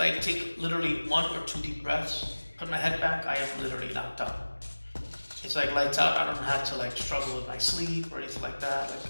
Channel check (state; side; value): inverted; both; correlation -1.00